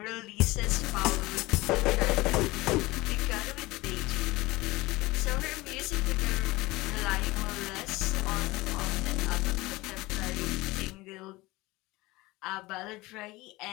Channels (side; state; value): right; quieter; 20.9 dB